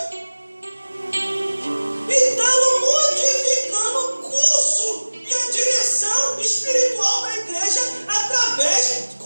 E estavam modificando o curso e a direção espiritual da igreja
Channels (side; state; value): both; inverted; correlation -1.00